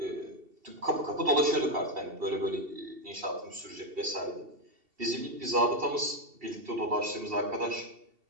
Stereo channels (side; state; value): left; late; 2.7 ms